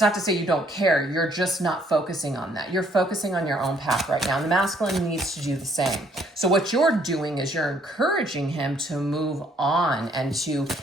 not to say you don't care. You're just not focusing on that. You're focusing on your own path right now. And the masculine needs to do the same. So what you're doing is you're encouraging him to move on and to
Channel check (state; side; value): normal; both; correlation 0.65